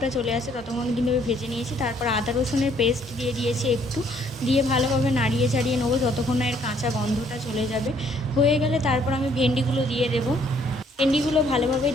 চলে আসে ততক্ষণ কিন্তু আমি ভেজে নিয়েছি। তারপর আদা রসুনের পেস্ট দিয়ে দিয়েছি একটু, দিয়ে ভালোভাবে নাড়িয়ে চাড়িয়ে নেবো যতক্ষণ না এর কাঁচা গন্ধটা চলে যাবে। হয়ে গেলে তারপর আমি ভেন্ডিগুলো দিয়ে দেবো। ভেন্ডিগুলো ভালোভাবে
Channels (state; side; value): normal; both; correlation 0.64